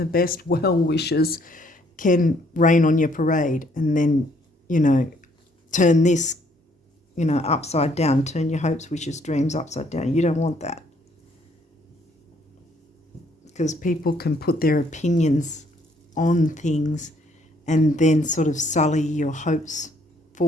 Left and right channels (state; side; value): normal; both; correlation 0.66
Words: best well-wishers can rain on your parade and then, turn this, upside down, turn your hopes, wishes, dreams upside down. You don't want that, because people can put their opinions on things and then sort of sully your hopes